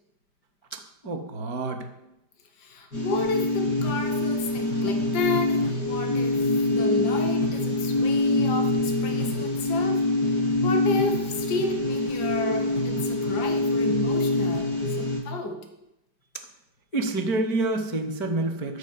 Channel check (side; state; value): right; late; 5.0 ms